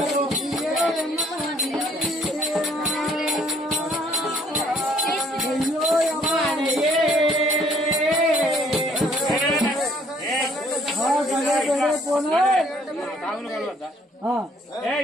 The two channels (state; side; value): normal; both; correlation 0.63